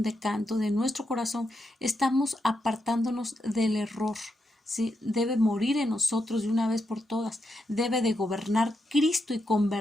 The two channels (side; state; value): both; normal; correlation 0.84